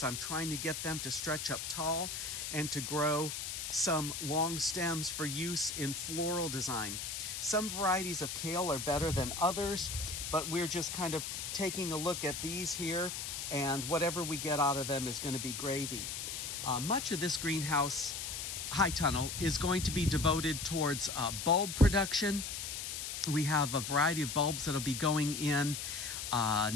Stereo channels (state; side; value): noise; left; hiss, 5 dB below the sound